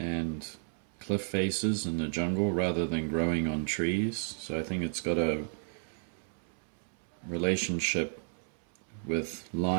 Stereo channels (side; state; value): left; silent; 56 dB below the other